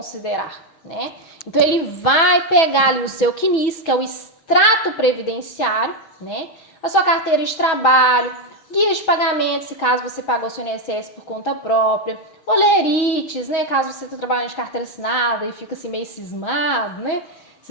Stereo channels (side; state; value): right; late; 6.2 ms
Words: né? Então ele vai pegar ali o seu CNIS, que é o extrato previdenciário, né? A sua carteira de trabalho, guia de pagamento, se caso você pagou seu INSS por conta própria, olerites, né? Caso você esteja trabalhando de carteira assinada e fica assim meio cismado, né?